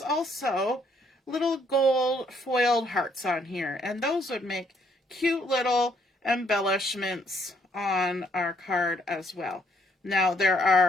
also little gold foiled hearts on here, and those would make cute little embellishments on our card as well. Now there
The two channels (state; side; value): normal; both; correlation 0.69